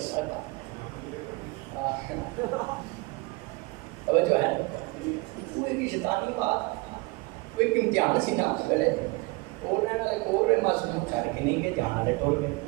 توجہ ہے کوئی بھی شیطانی بات کوئی امتحان سی نا اس ویلے اوڑ رہے والے اوڑ رہے معصوم چھڑ کے نہیں کہ جان والے ٹور گئے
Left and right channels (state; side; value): quieter; left; 25.9 dB